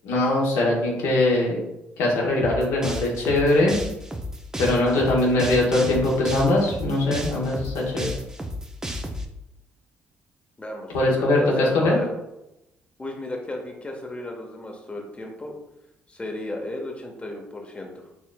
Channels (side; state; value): both; normal; correlation 0.63